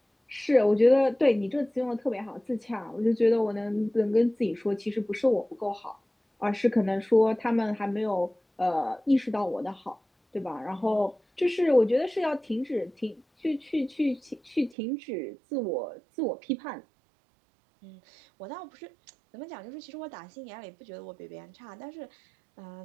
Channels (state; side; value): drops out; left; at 14.8 s